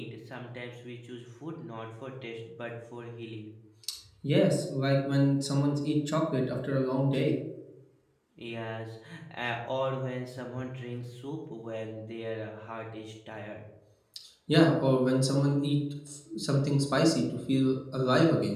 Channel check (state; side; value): identical; both; correlation 1.00